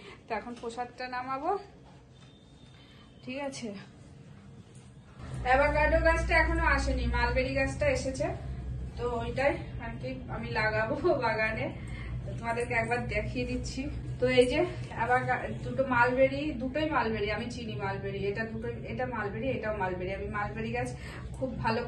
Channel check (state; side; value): identical; both; correlation 1.00